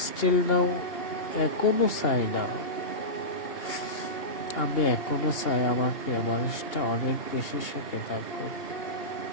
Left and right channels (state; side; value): late; right; 2.8 ms